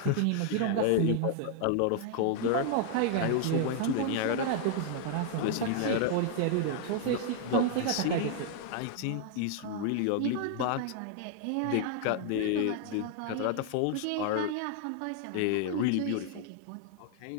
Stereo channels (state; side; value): different; both; correlation 0.00